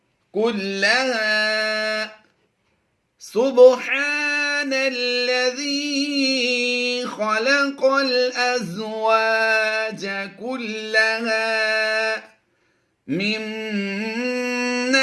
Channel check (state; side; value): identical; both; correlation 1.00